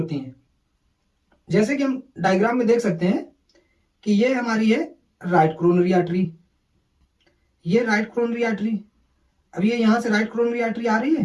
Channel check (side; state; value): both; identical; correlation 1.00